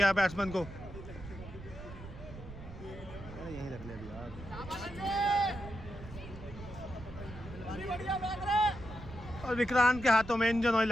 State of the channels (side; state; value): right; noise; rumble, 13 dB below the sound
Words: है बैट्समैन को। और विक्रांत के हाथों में इंजन ऑयल